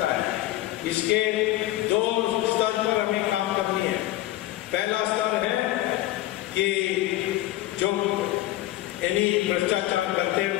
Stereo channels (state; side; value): quieter; right; 15.5 dB